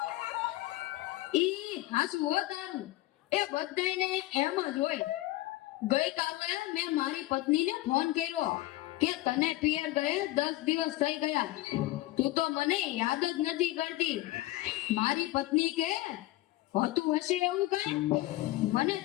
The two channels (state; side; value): quieter; right; 17.5 dB